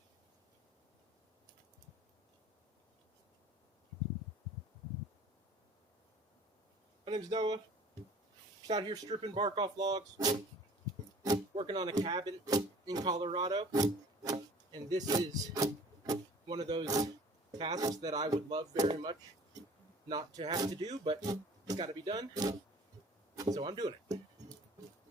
My name's Noah. Just out here stripping bark off logs, working on a cabin in Colorado. And this is one of those tasks that I would love very much not to have to do, but it's got to be done. So I'm doing it.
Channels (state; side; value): normal; both; correlation 0.48